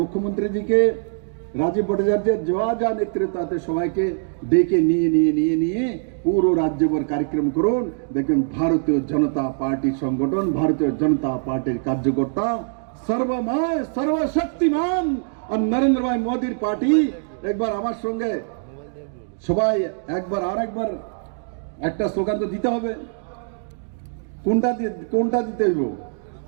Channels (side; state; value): left; silent; digital silence